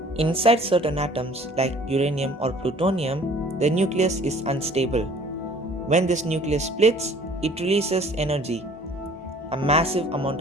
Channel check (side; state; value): both; normal; correlation 0.53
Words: Inside certain atoms like uranium or plutonium, the nucleus is unstable. When this nucleus splits, it releases energy, a massive amount